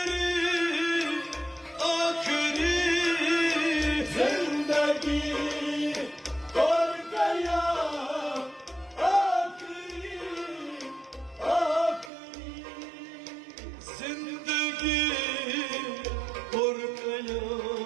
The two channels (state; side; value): drops out; left; at 12.1 s